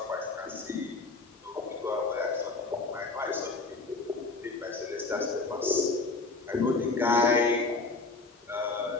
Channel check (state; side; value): quieter; right; 3.7 dB